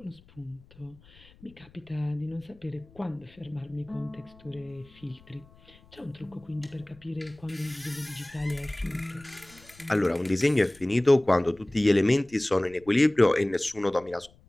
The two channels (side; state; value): left; noise; rumble, 26 dB below the sound